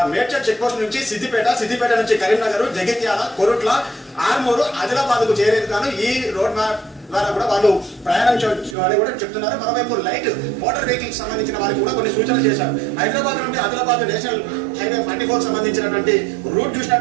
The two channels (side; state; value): left; drops out; at 8.8 s